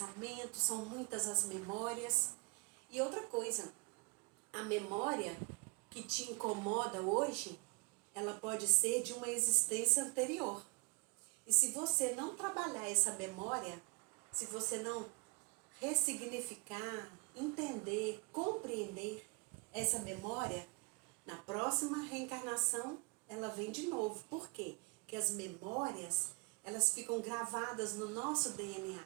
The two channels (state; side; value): quieter; left; 30.8 dB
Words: são muitas as memórias. E outra coisa, a memória que te incomoda hoje, ela pode ser de uma existência anterior. E se você não trabalhar essa memória, se você não ressignificar, entender, compreender essa memória, na próxima reencarnação ela vem de novo. Por quê? Porque as memórias, elas ficam gravadas no nosso DNA.